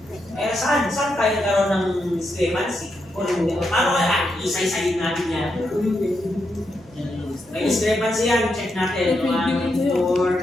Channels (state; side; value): noise; right; rumble, 26 dB below the sound